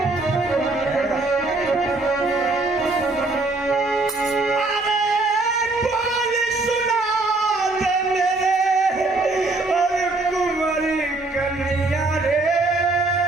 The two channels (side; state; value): left; quieter; 3.2 dB